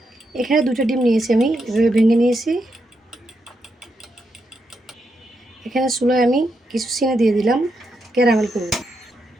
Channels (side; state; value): both; normal; correlation 0.82